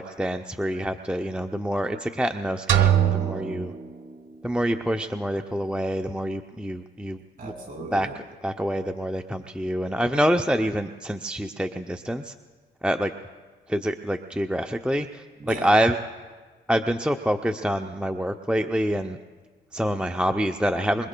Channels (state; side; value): normal; both; correlation 0.82